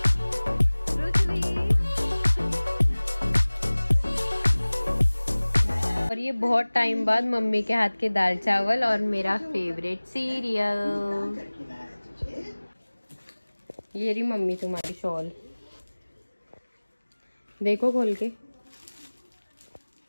और ये बहुत टाइम बाद मम्मी के हाथ के दाल चावल और मेरा फेवरेट सीरियल। ये रही मम्मी तुम्हारी शॉल, देखो खोल के।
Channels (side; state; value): both; inverted; correlation -1.00